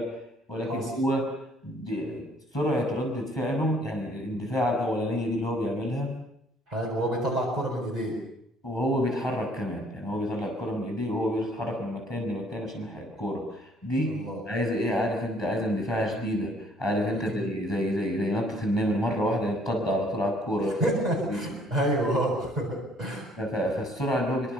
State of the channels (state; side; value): normal; both; correlation 0.61